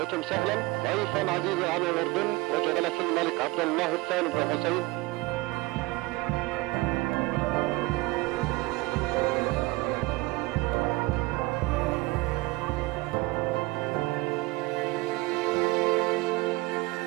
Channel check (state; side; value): quieter; left; 22.2 dB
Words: سهلا ضيفا عزيزا على الأردن وجلالة الملك عبد الله الثاني بن حسين.